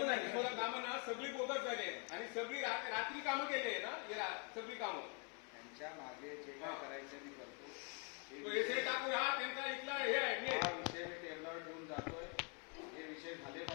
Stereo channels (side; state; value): right; quieter; 36.2 dB